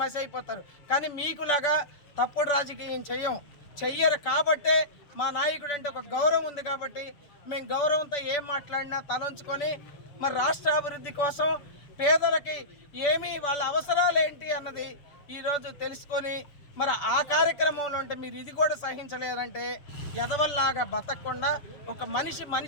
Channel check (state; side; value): late; right; 6.9 ms